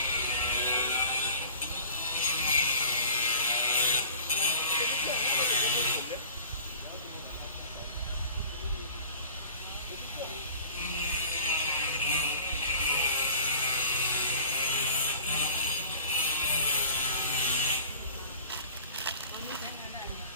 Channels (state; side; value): inverted; both; correlation -0.46